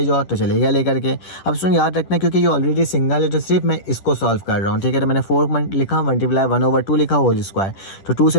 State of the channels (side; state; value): right; late; 10 ms